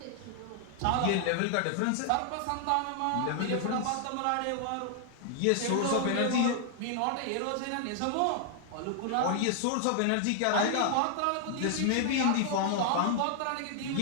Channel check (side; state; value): both; different; correlation 0.00